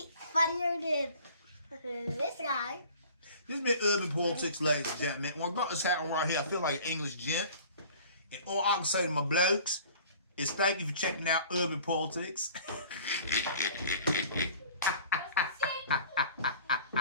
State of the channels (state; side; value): inverted; both; correlation -0.47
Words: than this guy. This has been Urban Politics, ladies and gentlemen. When I got this hat on right here, I feel like an English gent. And all I can say to my blokes is thank you for checking out Urban Politics.